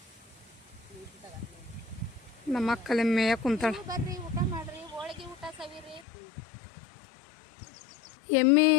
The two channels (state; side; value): drops out; right; at 6.0 s